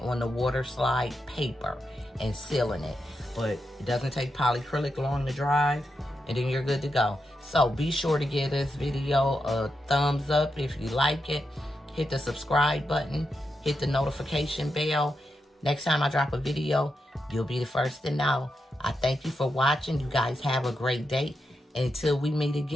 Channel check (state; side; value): normal; both; correlation 0.86